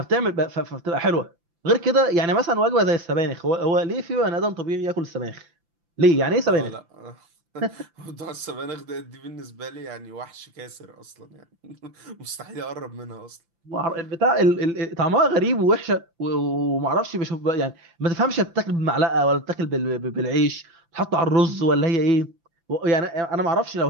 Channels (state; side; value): late; left; 5.9 ms